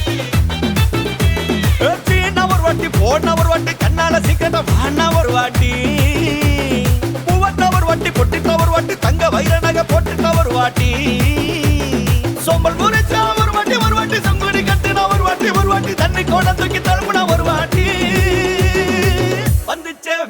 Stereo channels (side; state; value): both; identical; correlation 1.00